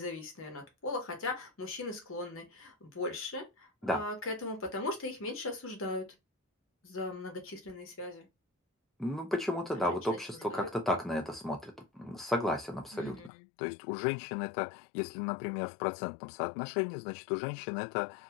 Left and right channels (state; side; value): drops out; right; at 13.3 s